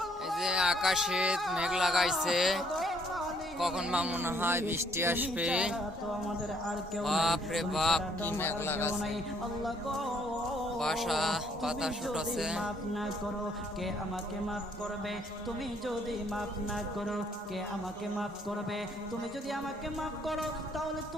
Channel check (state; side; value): normal; both; correlation 0.65